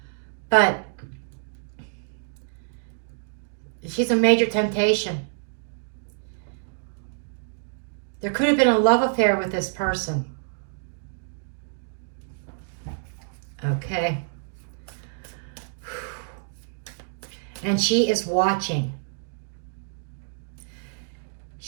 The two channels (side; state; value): left; silent; digital silence